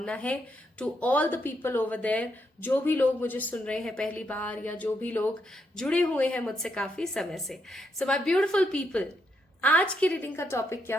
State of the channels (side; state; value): both; normal; correlation 0.79